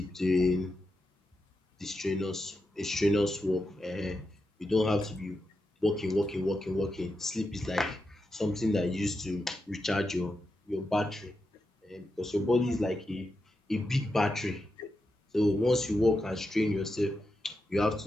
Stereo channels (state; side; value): normal; both; correlation 0.87